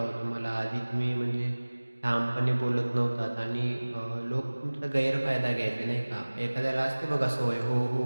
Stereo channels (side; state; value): both; inverted; correlation -1.00